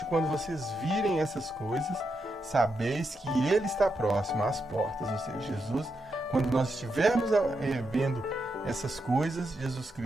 quando vocês virem essas coisas, sabeis que Ele está próximo às portas. Ou seja, Jesus, quando nós estivermos vendo essas coisas, Jesus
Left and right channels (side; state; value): both; normal; correlation 0.83